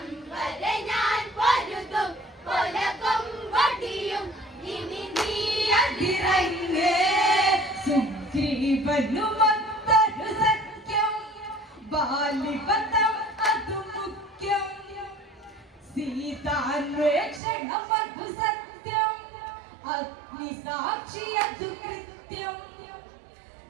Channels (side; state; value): left; drops out; at 17.4 s